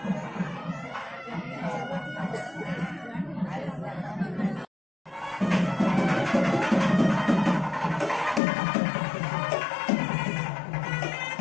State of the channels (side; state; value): right; drops out; at 8.4 s